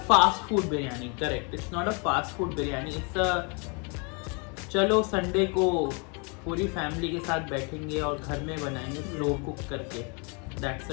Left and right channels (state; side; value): quieter; right; 33.8 dB